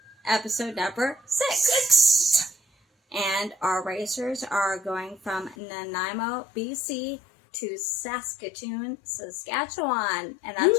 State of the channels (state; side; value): drops out; right; at 5.6 s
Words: episode number 6. And our racers are going from Nanaimo, BC to Saskatoon, Saskatchewan. And